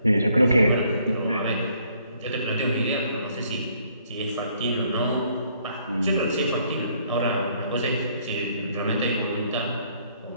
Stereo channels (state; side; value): inverted; both; correlation -0.66